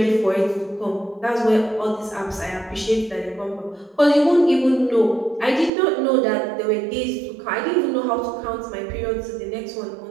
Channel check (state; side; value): drops out; left; at 5.7 s